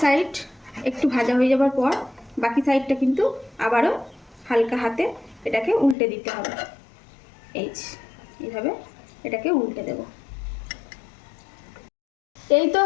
সাইড একটু ভাজা হয়ে যাওয়ার পর বাকি সাইডটা কিন্তু আবারও হালকা হাতে এটাকে উল্টে দিতে হবে। এইভাবে এটাকে উল্টে দেব। এই তো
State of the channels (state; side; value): drops out; right; at 6.0 s